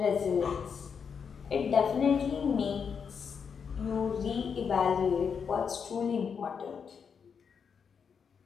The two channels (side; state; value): right; quieter; 6.5 dB